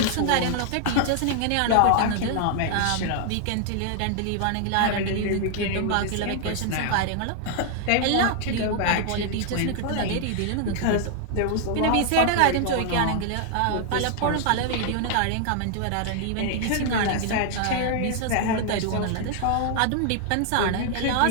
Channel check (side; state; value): both; different; correlation 0.00